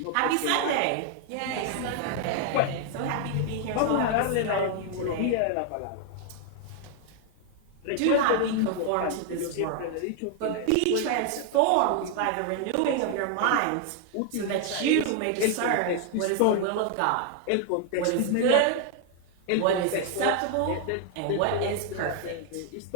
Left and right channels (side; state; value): both; different; correlation 0.00